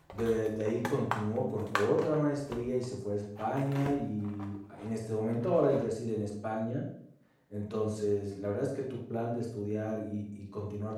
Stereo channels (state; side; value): identical; both; correlation 1.00